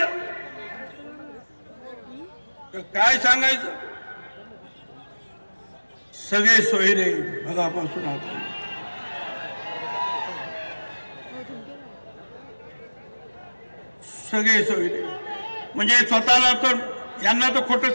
काय सांगायचं? सगळे सोयरे भगापासून आता सगळे सोयरे, म्हणजे स्वतःला तर यांना तर खोटं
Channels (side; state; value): both; inverted; correlation -1.00